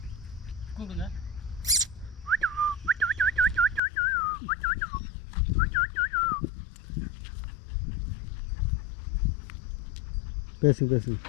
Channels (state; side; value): drops out; right; at 3.8 s